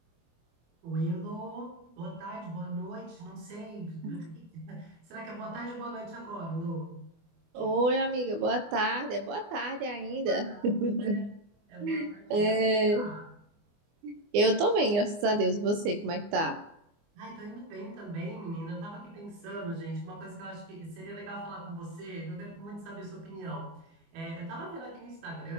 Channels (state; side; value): late; left; 24 ms